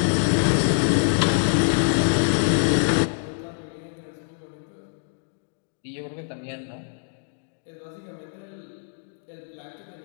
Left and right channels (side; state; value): right; silent; digital silence